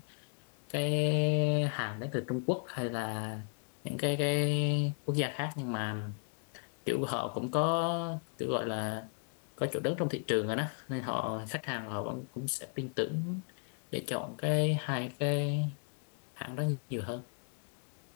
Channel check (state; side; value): silent; right; 54 dB below the other